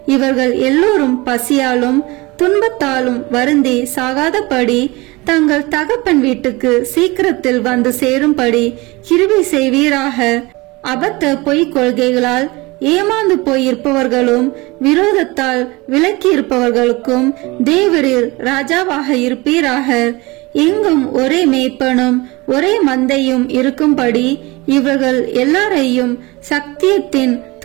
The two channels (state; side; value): quieter; left; 23.3 dB